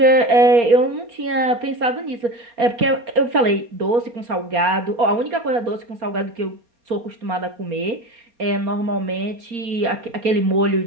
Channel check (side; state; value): left; late; 4.3 ms